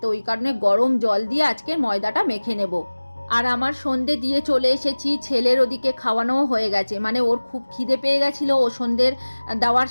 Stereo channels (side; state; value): both; inverted; correlation -1.00